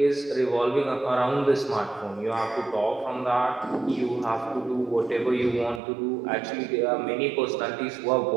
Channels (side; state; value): left; drops out; at 5.8 s